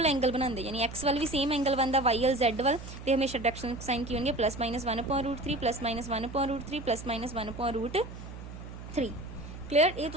एंगल बनाते, यानी एक्स वाल भी सेम एंगल बनता, वाई वाल जैड वाल, तो हमेशा डायरैक्शन कोसाइन की होंगे plus minus 1/√3 plus minus 1/√3 plus minus 1/√3। Clear. ये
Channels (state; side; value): noise; right; hum, 12 dB below the sound